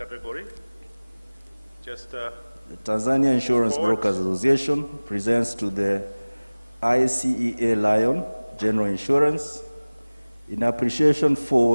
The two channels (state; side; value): inverted; both; correlation -1.00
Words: Just the Tanzania Insurance Brokers Association presents to the ICEA Lion General Insurance in appreciation